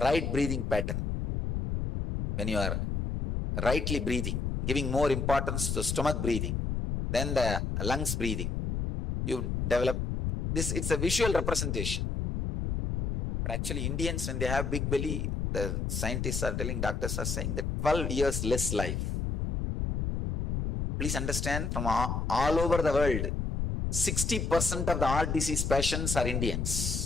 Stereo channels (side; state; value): left; noise; rumble, 1 dB below the sound